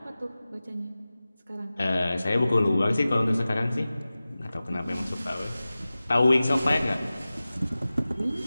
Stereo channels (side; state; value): both; inverted; correlation -0.97